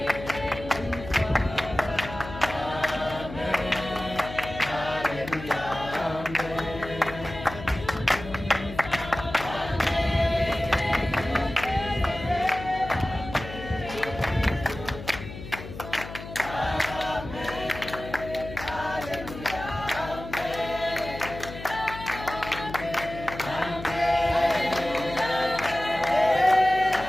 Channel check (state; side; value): noise; left; hum, 11 dB below the sound